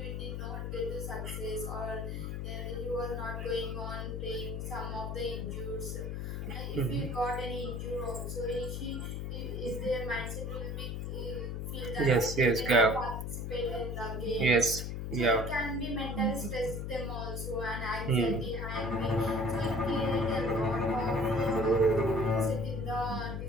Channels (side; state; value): left; noise; hum, 4 dB below the sound